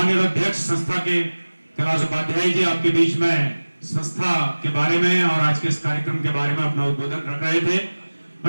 अध्यक्ष संस्था के कैलाश उपाध्याय जी, आपके बीच में संस्था के बारे में और आज के इस कार्यक्रम के बारे में अपना उद्बोधन रख रहे थे।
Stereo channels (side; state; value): both; inverted; correlation -1.00